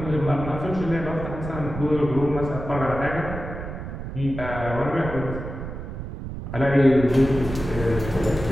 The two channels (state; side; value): noise; right; rumble, 8 dB below the sound